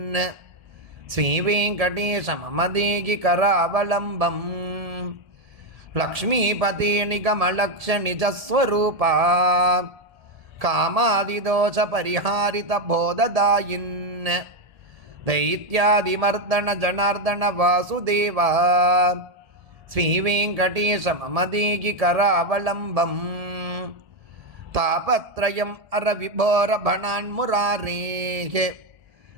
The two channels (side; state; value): left; late; 1.7 ms